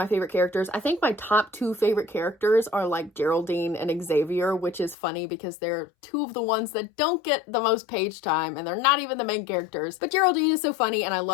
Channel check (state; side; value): drops out; right; at 5.0 s